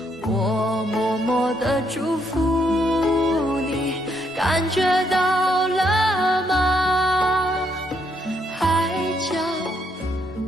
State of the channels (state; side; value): normal; both; correlation 0.74